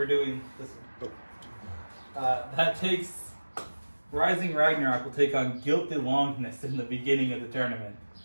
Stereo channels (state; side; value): inverted; both; correlation -1.00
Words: doing this one. That takes Rising Ragnarok will take on Guilty Longness in the beginning of the tournament.